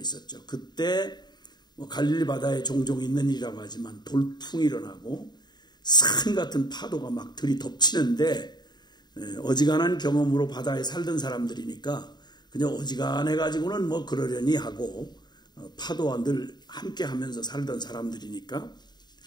그때 갈릴리 바다에 종종 있는 일이라고 하지만 돌풍이 일어나고 산 같은 파도가 막 들이덮치는데 어지간한 경험으로 바다에 살던 사람들이니까 그냥 어지간해 가지고는 그러려니 하고 파도와 늘 함께 하면서 살던 사람들이니까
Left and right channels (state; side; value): late; right; 0.21 ms